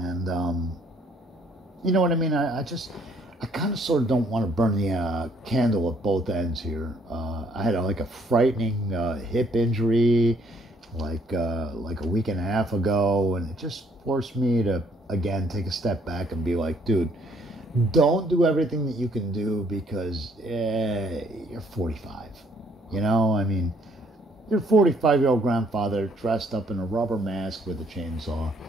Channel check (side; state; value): both; normal; correlation 0.65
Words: you know what I mean? I kind of sort of don't want to burn the candle at both ends here. I had a frightening hip injury like a week and a half ago, and it just forced me to, again, take a step back and be like, dude, don't do everything that you can do because you're 45. You know, I mean, you're a 45-year-old grandfather dressed up in a rubber mask with a chainsaw,